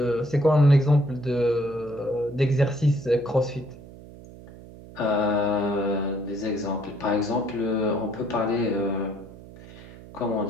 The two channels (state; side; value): noise; right; hum, 18 dB below the sound